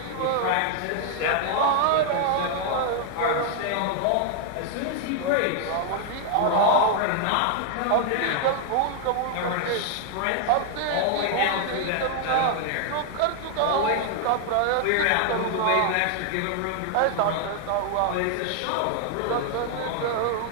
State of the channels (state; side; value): different; both; correlation 0.00